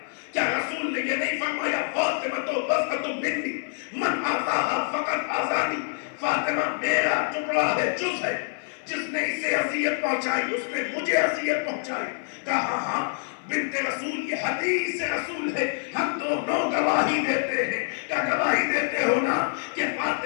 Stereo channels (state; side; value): silent; right; 58 dB below the other